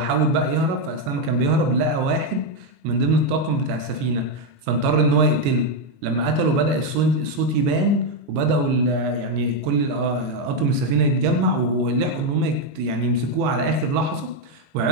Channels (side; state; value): left; late; 21 ms